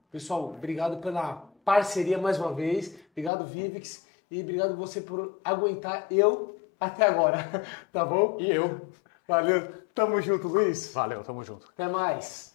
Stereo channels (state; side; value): drops out; right; at 3.3 s